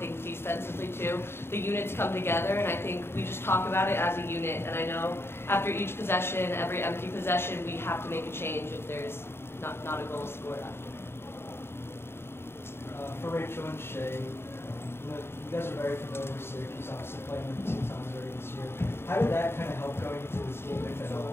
defensively too, the units come together, and I think we just talk about it as a unit. And I know after each possession, every empty possession, we have to make a change if there's not a goal scored after. For Rachel and Shea, you guys are very familiar with Syracuse, obviously playing them 2 times already this year. How did that kind of help going into this game, if at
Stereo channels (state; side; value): late; right; 0.11 ms